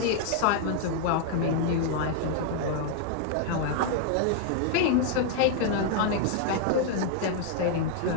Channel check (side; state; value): both; different; correlation 0.00